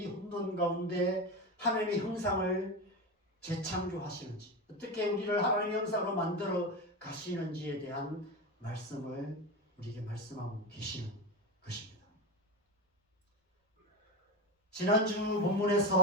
혼돈 가운데 하나님의 형상을 재창조하시는지, 어떻게 우리를 하나님의 형상으로 만들어 가시는지에 대한 말씀을 우리에게 말씀하고 계시는 것입니다. 지난주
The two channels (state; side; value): normal; both; correlation 0.17